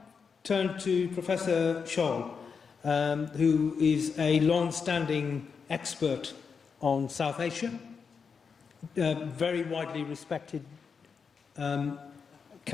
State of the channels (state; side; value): quieter; right; 5.8 dB